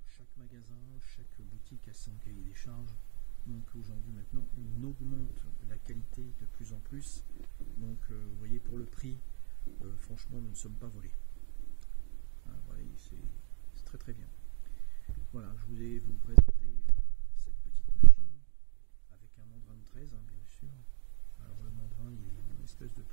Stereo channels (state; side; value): quieter; left; 37.2 dB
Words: Chaque magasin, chaque boutique a son cahier des charges. Donc aujourd'hui maintenant on augmente la qualité de plus en plus. Donc vous voyez, pour le prix, franchement nous ne sommes pas volés. Hein, voilà, c'est très très bien. Voilà, je voulais vous présenter cette petite machine avec un mandrin de 13, hein, bien sûr. Alors le mandrin il est en espèce de